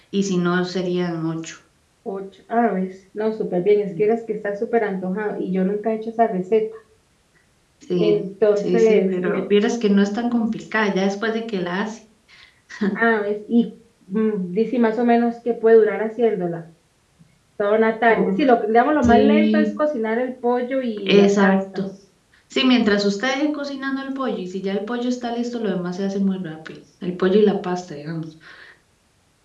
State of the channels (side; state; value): both; identical; correlation 1.00